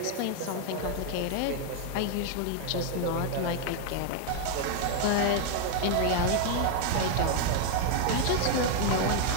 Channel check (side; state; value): both; different; correlation 0.00